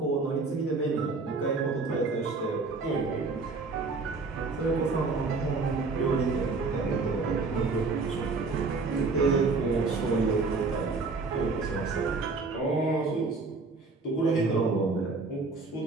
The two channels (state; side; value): quieter; left; 3.9 dB